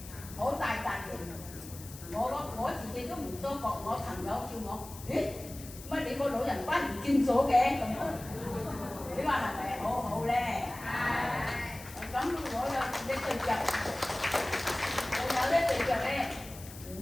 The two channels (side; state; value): left; noise; hiss, 15 dB below the sound